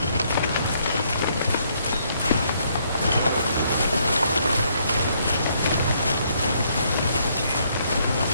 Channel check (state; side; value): inverted; both; correlation -0.70